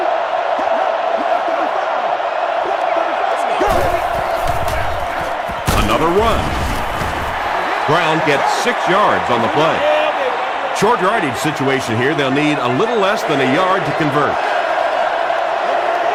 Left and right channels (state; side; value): identical; both; correlation 1.00